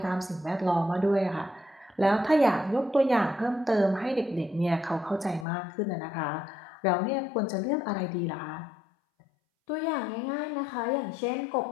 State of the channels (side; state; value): right; drops out; at 5.5 s